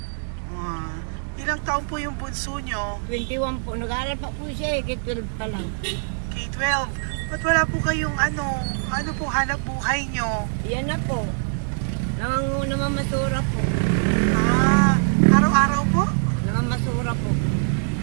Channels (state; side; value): silent; left; digital silence